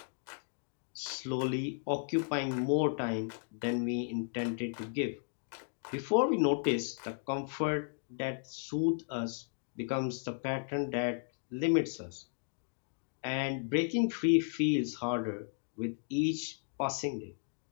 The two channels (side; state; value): right; silent; digital silence